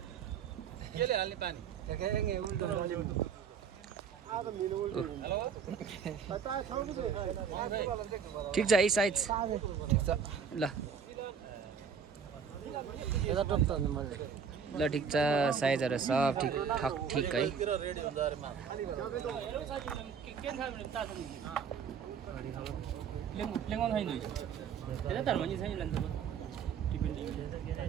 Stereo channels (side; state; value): left; quieter; 6.7 dB